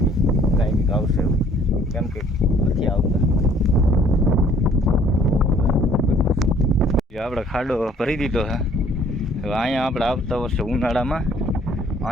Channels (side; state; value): both; normal; correlation 0.58